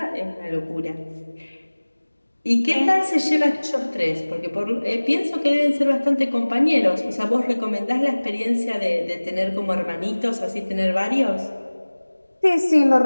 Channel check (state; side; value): inverted; both; correlation -1.00